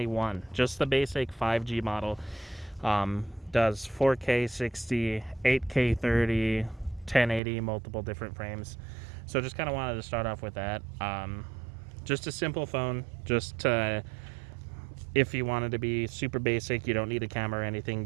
just the basic 5G model. Does 4K 60, 8K 30, 1080, multiple different frames. So just kind of wanted to start off with that. Just a simple phone, just to, if you wanted to be super basic, you don't need a camera or anything,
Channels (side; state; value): left; drops out; at 7.4 s